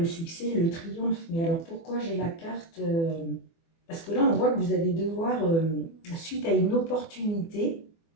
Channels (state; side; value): late; right; 24 ms